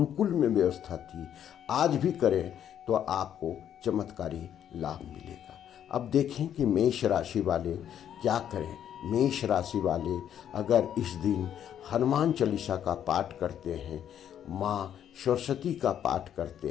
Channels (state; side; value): quieter; right; 9.8 dB